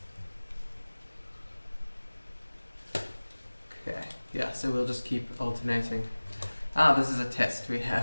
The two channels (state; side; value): inverted; both; correlation -1.00